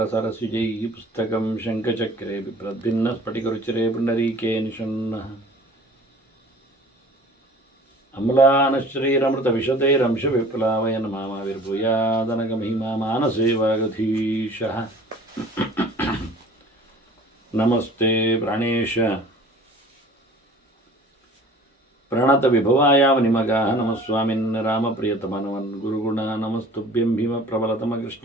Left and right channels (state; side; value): normal; both; correlation 0.47